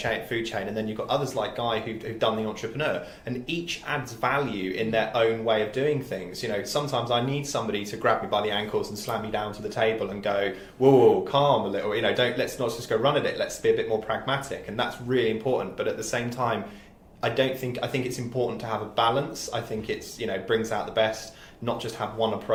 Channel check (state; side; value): identical; both; correlation 1.00